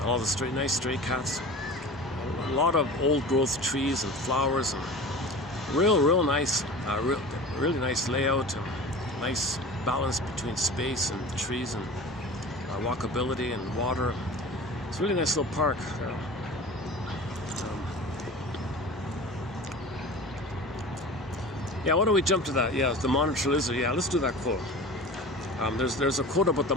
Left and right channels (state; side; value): normal; both; correlation 0.36